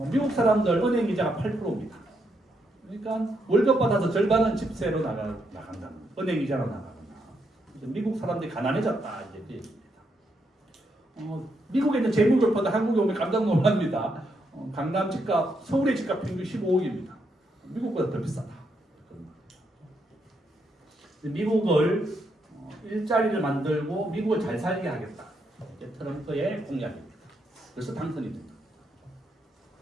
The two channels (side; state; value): both; normal; correlation 0.79